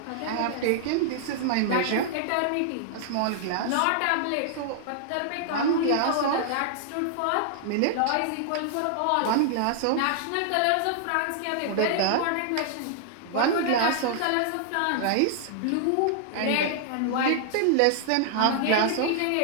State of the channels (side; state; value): both; different; correlation -0.01